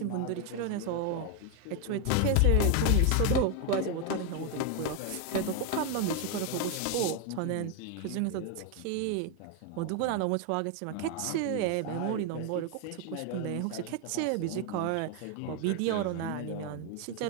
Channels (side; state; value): both; different; correlation 0.01